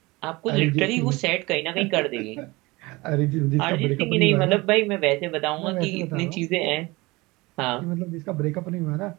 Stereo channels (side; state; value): left; quieter; 22.6 dB